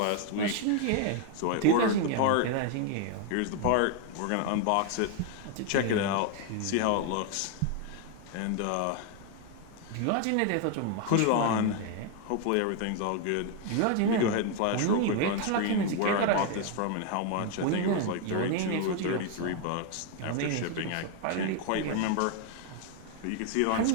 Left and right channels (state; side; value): different; both; correlation 0.01